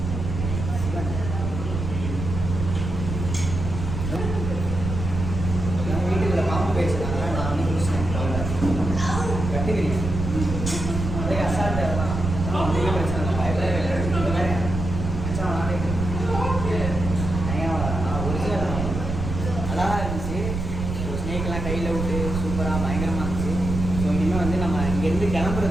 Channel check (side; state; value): right; noise; rumble, 4 dB below the sound